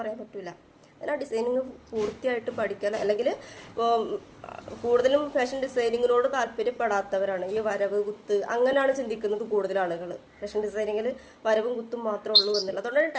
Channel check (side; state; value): both; identical; correlation 1.00